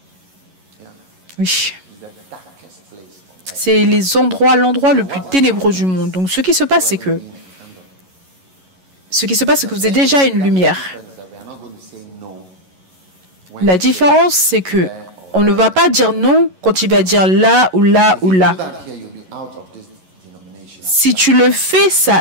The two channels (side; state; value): left; late; 11 ms